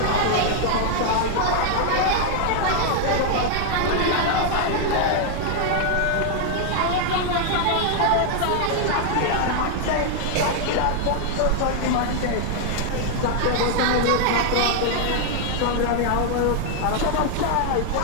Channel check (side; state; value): both; different; correlation 0.00